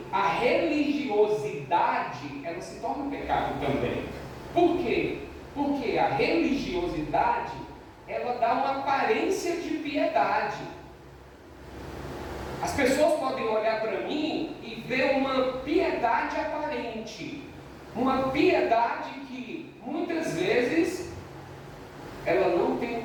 a religiosidade, ela se torna pecado também. Por quê? Porque a religiosidade, ela dá uma aparência de piedade. As pessoas podem olhar para mim e ver uma piedade aparente. Uma piedade que, muitas vezes, ela não tem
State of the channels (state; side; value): identical; both; correlation 1.00